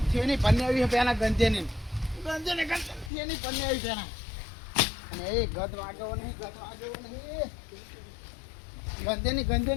છેની પન્ને આવી પેલા ગંજેની છેની પન્ને આવી પેલા અને એ ગદ વાગ્યો નહીં ગંજેની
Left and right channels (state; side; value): drops out; right; at 3.1 s